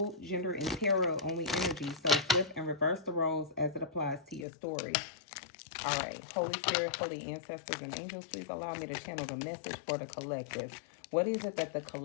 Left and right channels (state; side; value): drops out; right; at 4.5 s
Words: gender in tarot, only energy. So flip and reverse the roles as it applies to your story. All right. Holy Spirit, holy ancestors, and angels, please allow me to channel the message for the collective. What is it that the